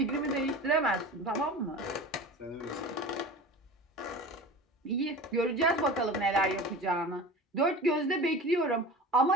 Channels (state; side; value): normal; both; correlation 0.35